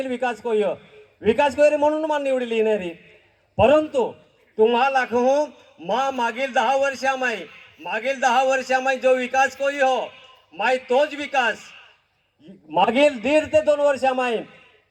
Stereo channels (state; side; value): identical; both; correlation 1.00